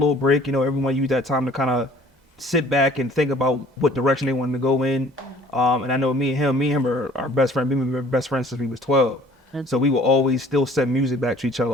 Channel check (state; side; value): normal; both; correlation 0.54